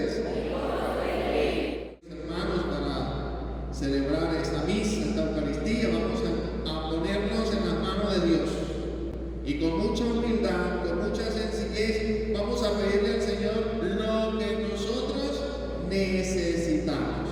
Hermanos, para celebrar esta misa, esta Eucaristía, vamos a ponernos en las manos de Dios. Y con mucha humildad, con mucha sencillez, vamos a pedirle al Señor lo que nosotros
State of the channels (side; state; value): both; identical; correlation 1.00